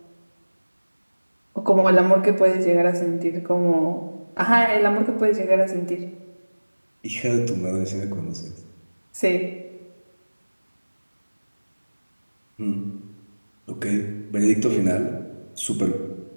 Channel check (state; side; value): inverted; both; correlation -1.00